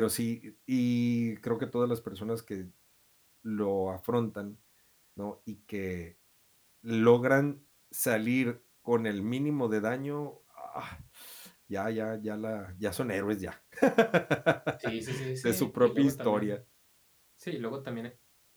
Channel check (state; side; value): identical; both; correlation 1.00